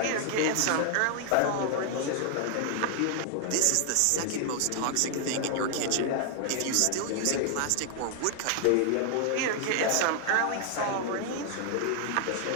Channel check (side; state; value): both; different; correlation 0.00